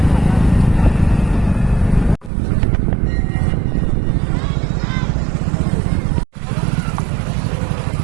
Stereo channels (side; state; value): left; drops out; at 2.3 s